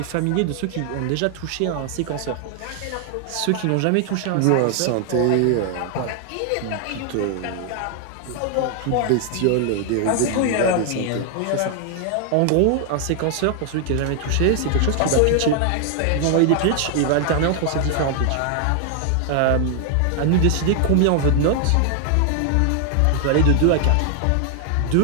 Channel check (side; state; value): both; different; correlation 0.00